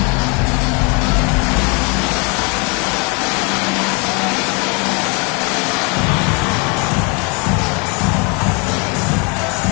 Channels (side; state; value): right; quieter; 32.6 dB